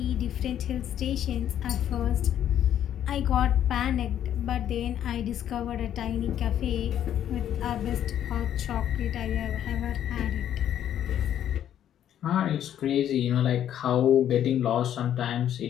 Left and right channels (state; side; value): quieter; right; 10.5 dB